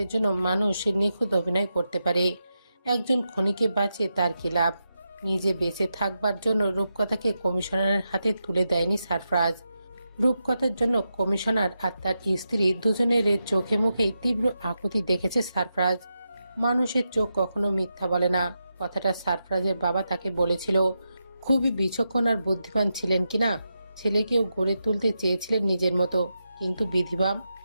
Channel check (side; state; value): both; inverted; correlation -0.87